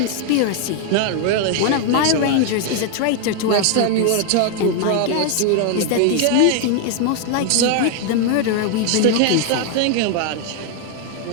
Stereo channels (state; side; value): different; both; correlation 0.00